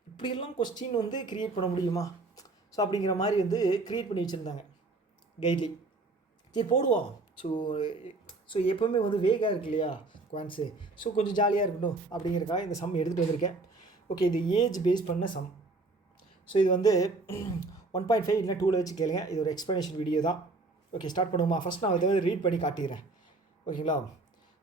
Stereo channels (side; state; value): left; quieter; 3.4 dB